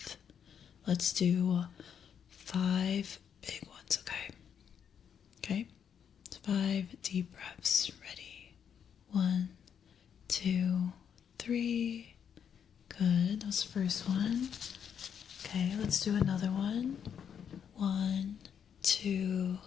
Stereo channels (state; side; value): quieter; right; 8.0 dB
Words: Let's do 5 big ones, okay? Okay? 5 deep breaths, ready? 1, 2, 3. Good. That was the first one. Okay, let's do another one. 1, 2,